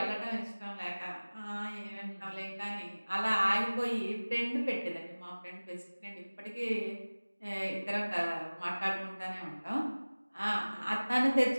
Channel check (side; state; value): both; inverted; correlation -1.00